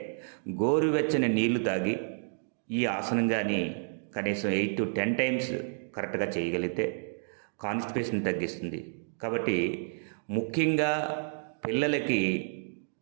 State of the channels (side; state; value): left; silent; digital silence